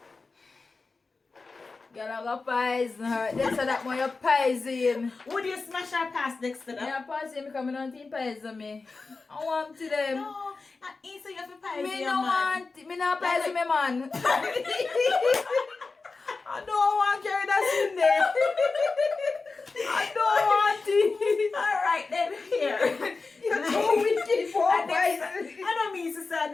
Girl, I go poison her. Dexter, that one you poison. Would you smash our pass next to that? Yeah, pass him because I don't think poison me. I want to them. No, not easy. You have to poison Me your no man. want. Me not poison me man. I don't want to carry that in there. I don't want it. Alright then, here. You're too wicked for I don't mean to say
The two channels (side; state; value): right; quieter; 4.0 dB